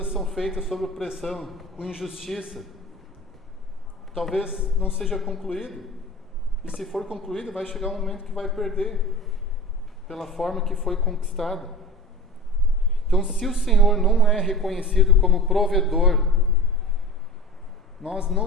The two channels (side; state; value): both; normal; correlation 0.36